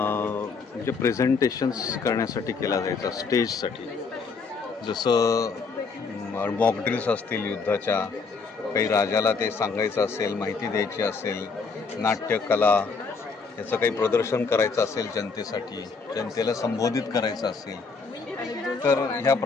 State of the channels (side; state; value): right; quieter; 4.8 dB